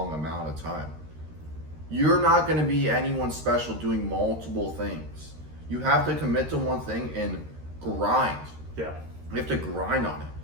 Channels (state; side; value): late; left; 13 ms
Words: amount of time. You're not gonna be anyone special doing multiple things. You have to commit to one thing and grind. Yeah. You have to grind on it.